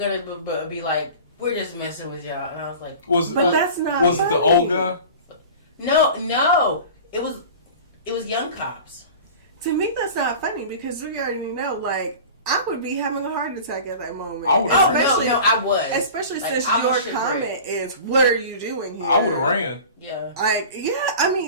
be like, we're just messing with y'all, and I was like, That's not. Was funny. it the old guy? no, it was young cops. To me, that's not funny because we already know, like, I would be having a heart attack at that moment. I would've especially, no, I was. Especially Like, since I your was comment is, "What are you doing here?" I would have ran. Yeah. Like, yeah, I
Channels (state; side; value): inverted; both; correlation -0.38